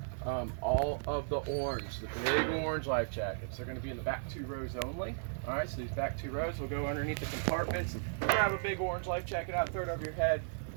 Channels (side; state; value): left; silent; 54 dB below the other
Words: all of the orange, the big orange life jackets, they're going to be in the back 2 rows only. All right, so these back 2 rows will go underneath the compartments. Grab a big orange life jacket out, throw it over your head,